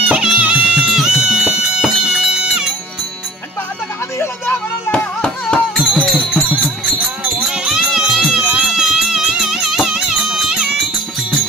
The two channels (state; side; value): normal; both; correlation 0.48